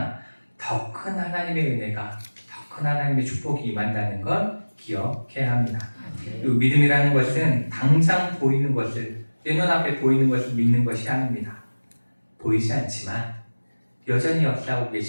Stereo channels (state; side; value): inverted; both; correlation -1.00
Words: 더 큰 하나님의 은혜가, 더 큰 하나님의 축복이 임한다는 걸 기억해야 합니다. 그리고 믿음이라는 것은 당장 보이는 것을, 내 눈앞에 보이는 것을 믿는 것이 아닙니다. 보이지 않지만 여전히 역사하고